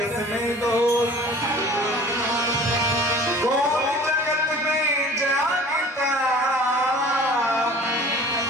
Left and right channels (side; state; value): both; normal; correlation 0.45